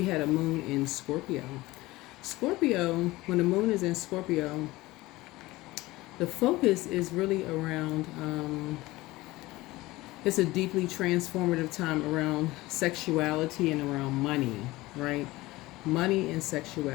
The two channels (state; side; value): quieter; right; 19.4 dB